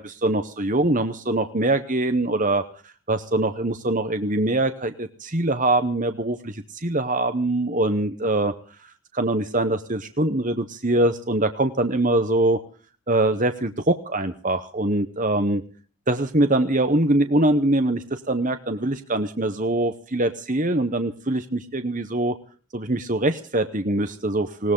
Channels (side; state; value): both; normal; correlation 0.35